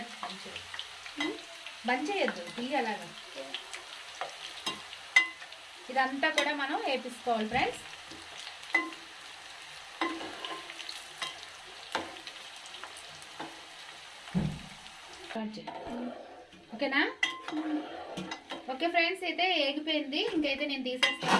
బంద్ చేయొద్దు, అలాగా ఇదంతా కూడా మనం వేపించుకోవాలి ఫ్రెండ్స్. ఓకేనా? ఓకే ఫ్రెండ్స్, అయితే ఏగిపోయింది. ఇంకైతే నేను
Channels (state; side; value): identical; both; correlation 1.00